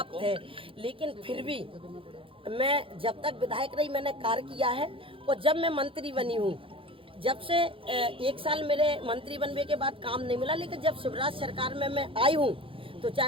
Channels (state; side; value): late; left; 0.26 ms